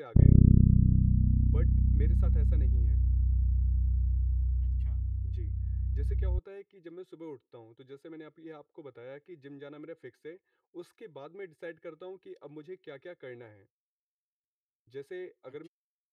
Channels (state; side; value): identical; both; correlation 1.00